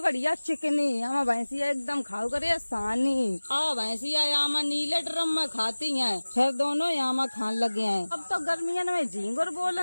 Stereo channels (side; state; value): both; inverted; correlation -1.00